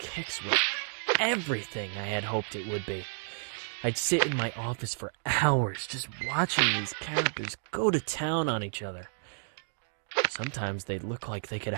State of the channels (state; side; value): silent; left; digital silence